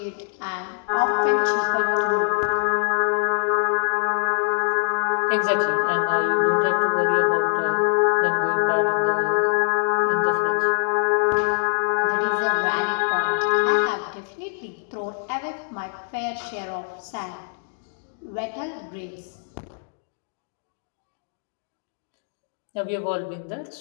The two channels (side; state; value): right; silent; digital silence